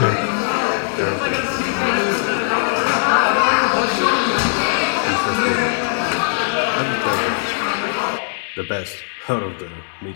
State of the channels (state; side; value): silent; right; digital silence